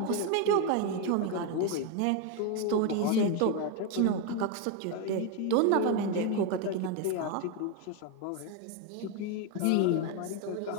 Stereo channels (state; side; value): different; both; correlation 0.02